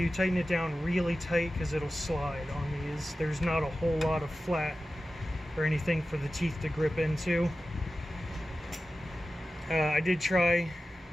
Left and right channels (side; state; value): both; normal; correlation 0.94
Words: tighten it down really tight because it'll slide on these. There's not a whole lot of flat or anything for the teeth to grip into. I did try